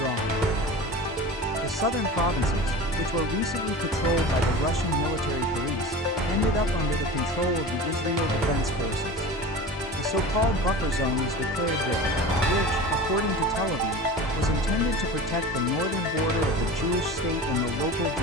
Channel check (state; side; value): normal; both; correlation 0.34